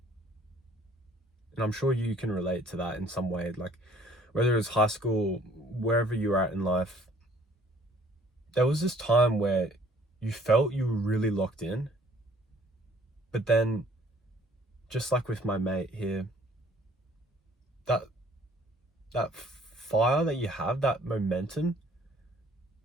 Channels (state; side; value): normal; both; correlation 0.58